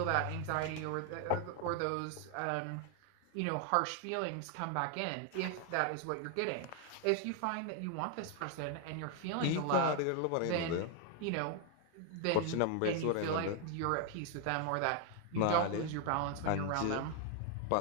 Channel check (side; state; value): both; different; correlation 0.01